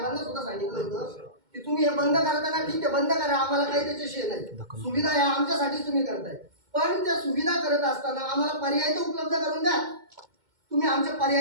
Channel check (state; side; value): late; left; 2.1 ms